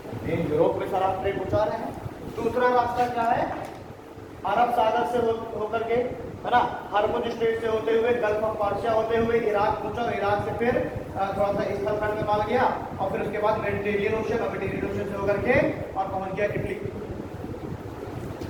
यूरोप में सारा ट्रेड पहुंचा रहे हैं। दूसरा रास्ता क्या है? अरब सागर से होकर के, है ना, हार्मुज स्ट्रेट से होते हुए गल्फ ऑफ पार्शिया होते हुए इराक पहुंचा, इराक से फिर थोड़ा सा स्थल खंड में माल गया और फिर उसके बाद मेडिटेरियन ओशन से होकर के और पहुंच गया इटली।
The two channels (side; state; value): both; identical; correlation 1.00